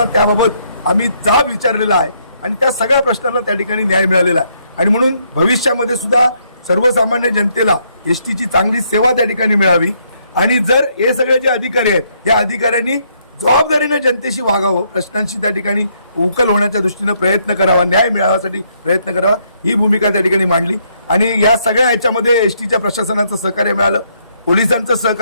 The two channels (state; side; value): inverted; both; correlation -0.72